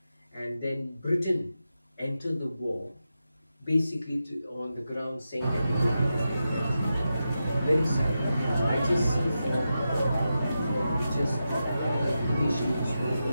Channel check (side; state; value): both; inverted; correlation -0.89